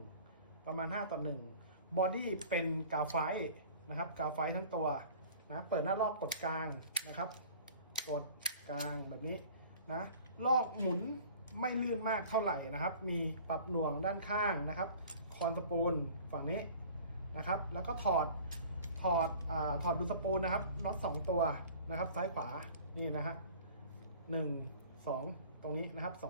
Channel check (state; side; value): inverted; both; correlation -0.46